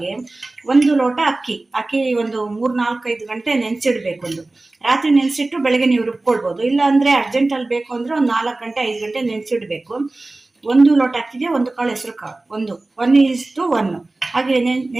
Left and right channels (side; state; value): left; quieter; 3.0 dB